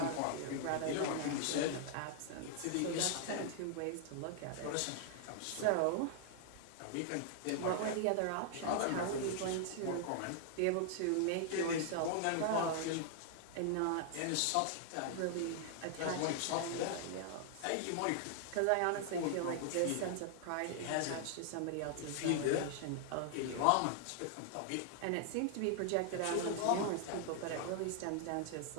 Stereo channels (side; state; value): both; different; correlation 0.00